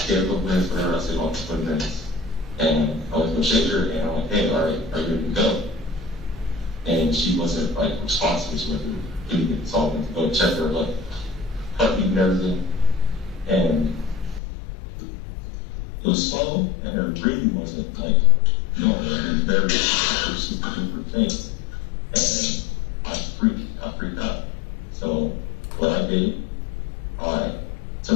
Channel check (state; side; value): drops out; right; at 14.4 s